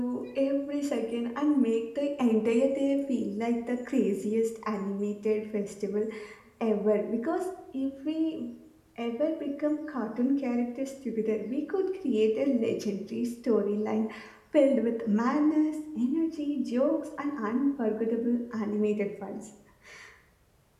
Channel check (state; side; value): identical; both; correlation 1.00